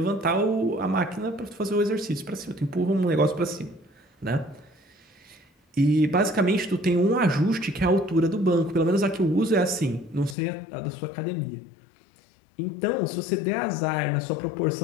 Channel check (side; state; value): right; drops out; at 10.4 s